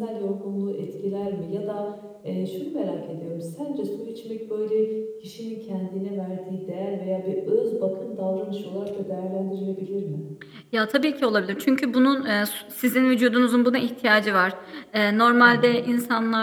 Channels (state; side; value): identical; both; correlation 1.00